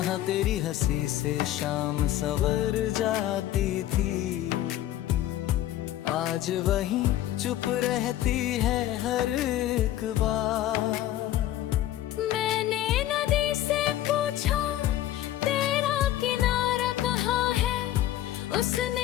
तेरी हंसी से शाम सवर जाती थी, आज वहीं चुप रहती है हर एक बार। मैंने नदी से पूछा तेरा किनारा कहाँ है,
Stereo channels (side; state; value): right; quieter; 13.3 dB